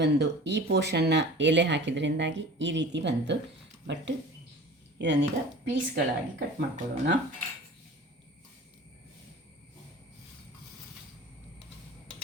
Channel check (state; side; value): normal; both; correlation 0.41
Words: ಈ ಪೋರ್ಷನ್ನ ಎಲೆ ಹಾಕಿದ್ರಿಂದಾಗಿ ಈ ರೀತಿ ಬಂತು. ಬಟ್ ಇದನ್ನೀಗ ಪೀಸ್ಗಳಾಗಿ ಕಟ್ ಮಾಡ್ಕೊಳ್ಳೋಣ.